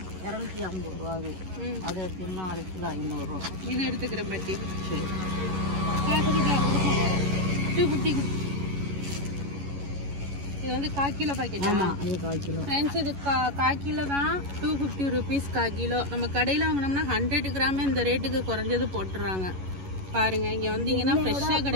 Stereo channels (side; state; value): left; late; 11 ms